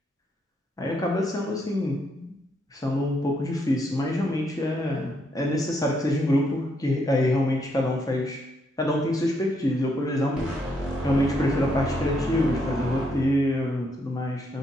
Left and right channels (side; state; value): both; normal; correlation 0.75